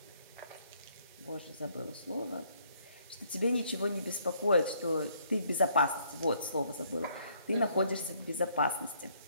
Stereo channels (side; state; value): both; inverted; correlation -0.67